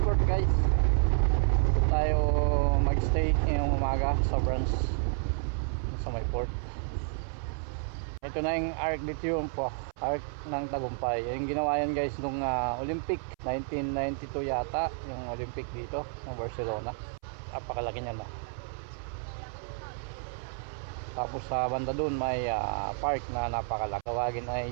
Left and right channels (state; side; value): silent; left; 58 dB below the other